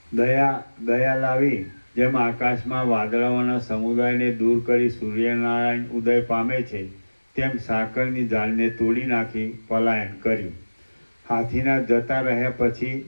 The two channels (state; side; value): inverted; both; correlation -1.00